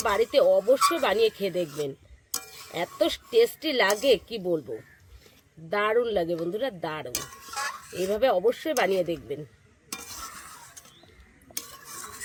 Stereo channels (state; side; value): identical; both; correlation 1.00